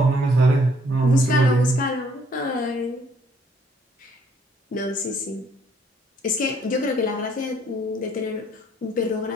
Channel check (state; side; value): normal; both; correlation 0.64